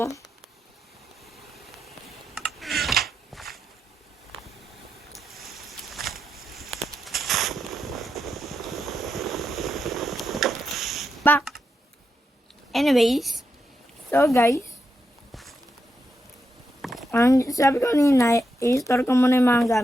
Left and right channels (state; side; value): normal; both; correlation 0.85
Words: Back. Anyways. So guys. Ang sabi ko kanina, i-store ko muna yung mga